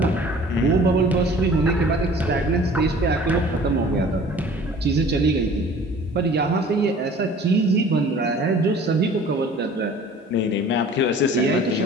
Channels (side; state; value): both; normal; correlation 0.48